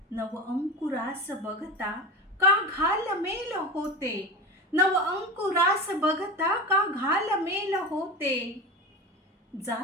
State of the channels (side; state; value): both; normal; correlation 0.25